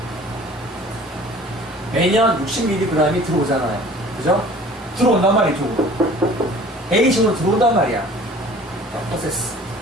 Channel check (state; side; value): normal; both; correlation 0.48